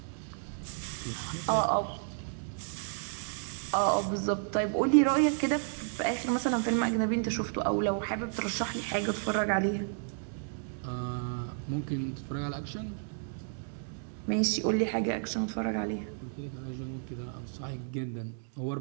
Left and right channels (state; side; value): silent; left; digital silence